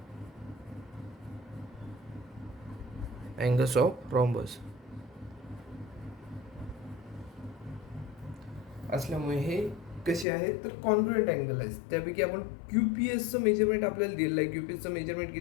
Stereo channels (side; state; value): right; drops out; at 10.2 s